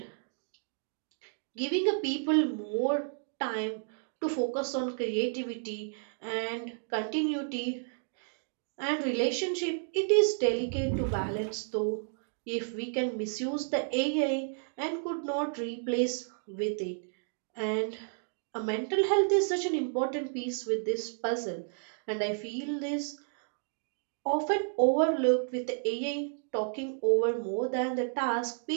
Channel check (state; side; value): silent; left; digital silence